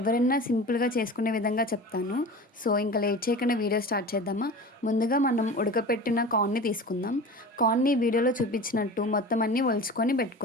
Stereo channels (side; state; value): both; normal; correlation 0.34